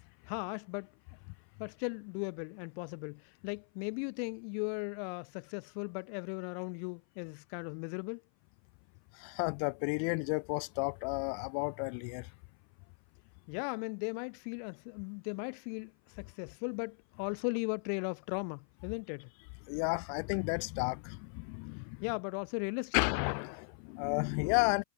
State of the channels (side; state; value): right; silent; 52 dB below the other